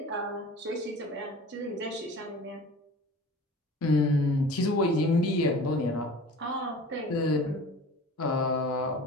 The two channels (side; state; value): both; normal; correlation 0.41